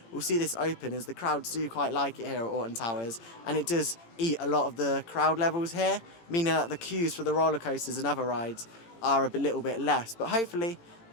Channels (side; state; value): right; late; 18 ms